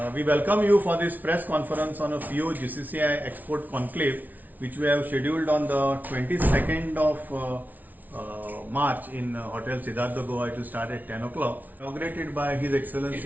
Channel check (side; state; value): left; late; 0.079 ms